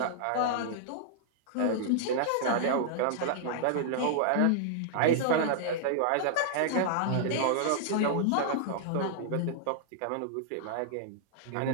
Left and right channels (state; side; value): different; both; correlation -0.01